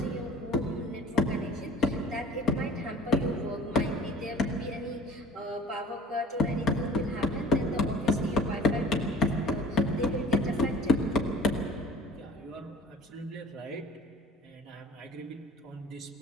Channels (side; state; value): both; normal; correlation 0.47